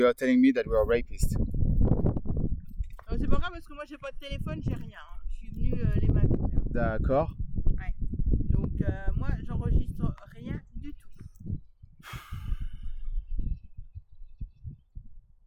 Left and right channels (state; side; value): identical; both; correlation 1.00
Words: are telling me that we are rapists. C'est pas grave parce que moi, j'ai pas de téléphone, j'ai rien. Je suis venue les mains vides. D'accord. Ouais. Donc, moi, j'enregistre rien du tout.